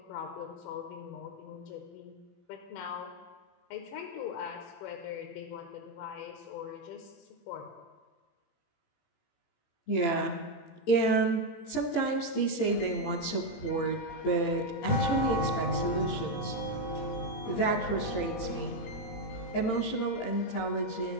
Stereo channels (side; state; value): right; late; 18 ms